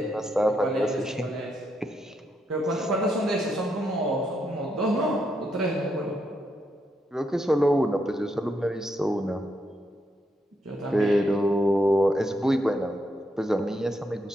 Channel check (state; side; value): normal; both; correlation 0.79